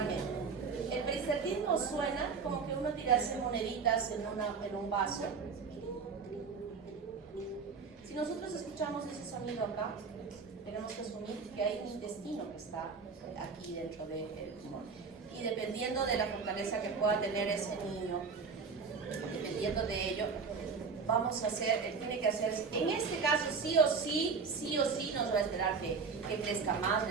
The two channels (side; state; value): left; quieter; 5.2 dB